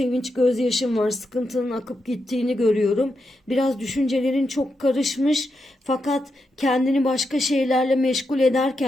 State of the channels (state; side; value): normal; both; correlation 0.85